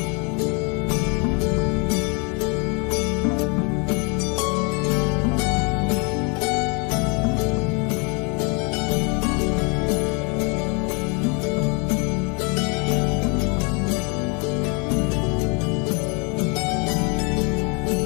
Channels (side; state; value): right; quieter; 33.3 dB